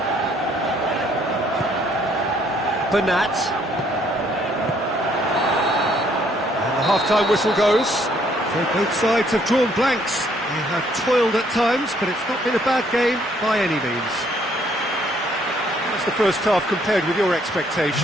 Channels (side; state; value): both; normal; correlation 0.66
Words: Bernat. And the half-time whistle goes. So both sides have drawn blanks. They have toiled at times, but it's not been a bad game by any means. How's the first half compared with your